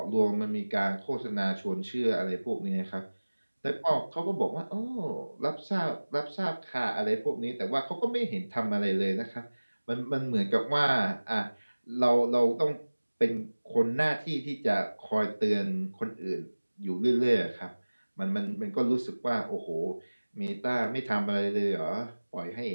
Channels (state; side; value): inverted; both; correlation -1.00